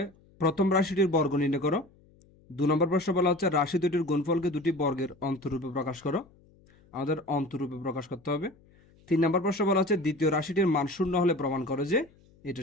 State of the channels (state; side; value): noise; left; hum, 29 dB below the sound